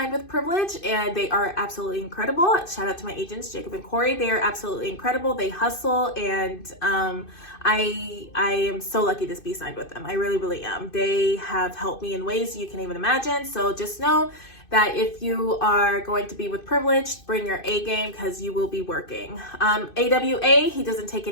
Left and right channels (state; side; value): late; right; 2.5 ms